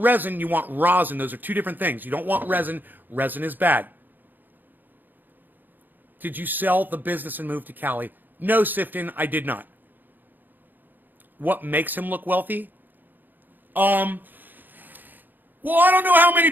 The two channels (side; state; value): left; late; 0.088 ms